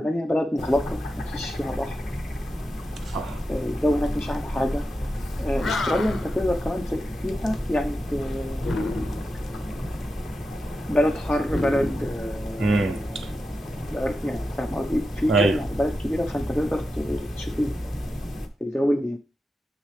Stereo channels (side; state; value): both; normal; correlation 0.90